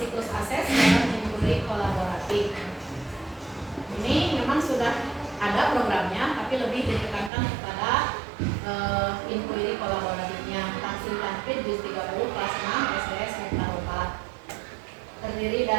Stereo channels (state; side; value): drops out; left; at 7.3 s